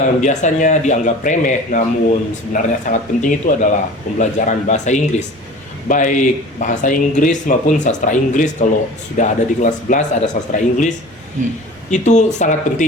biasanya dianggap remeh namun sebenarnya sangat penting itu adalah pembelajaran bahasa Inggris. Baik bahasa Inggris maupun sastra Inggris. Kalau sudah ada di kelas 11 ada sastra Inggris, itu sangat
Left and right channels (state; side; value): normal; both; correlation 0.40